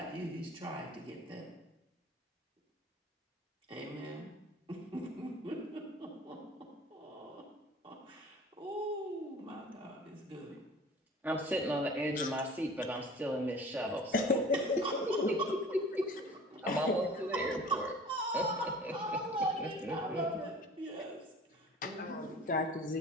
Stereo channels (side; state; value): both; normal; correlation 0.44